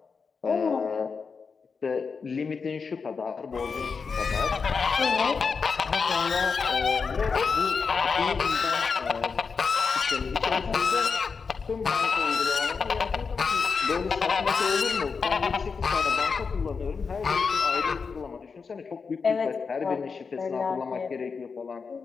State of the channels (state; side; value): quieter; right; 5.2 dB